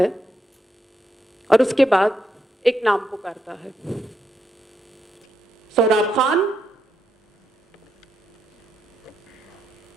और उसके बाद एक नाम पुकारता है, सोहराब खान।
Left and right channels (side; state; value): both; normal; correlation 0.81